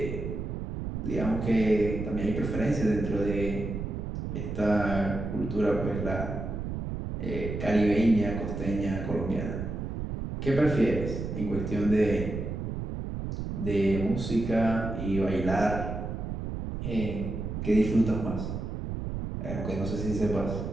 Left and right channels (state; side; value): noise; right; rumble, 5 dB below the sound